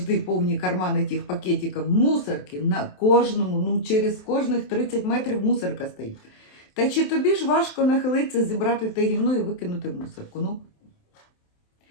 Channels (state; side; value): late; right; 27 ms